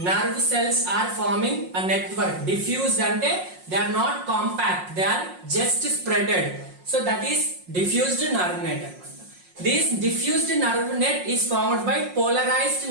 nerve cells are forming a network. Diffused ante they are not compact, they are just spreaded. So that is diffused nerve net. This diffused nerve net is formed by polarized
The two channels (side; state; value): left; late; 5.5 ms